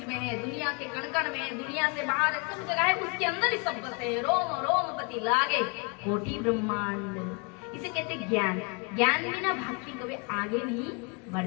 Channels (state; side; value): quieter; right; 32.2 dB